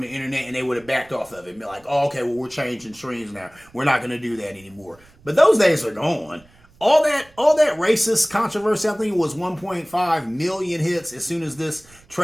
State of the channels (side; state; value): right; noise; rumble, 28 dB below the sound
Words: internet, and they would have backed off of it and be like, oh, okay, well, we're changing streams now. We're not going to do that anymore. But those days are gone. All that racist controversy, I think it was 1.5 million hits as soon as this